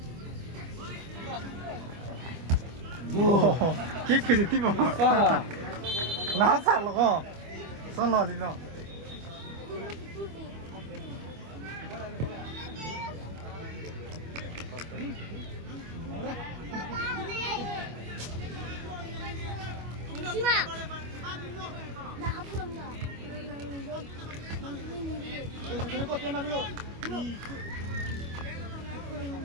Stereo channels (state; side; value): late; left; 25 ms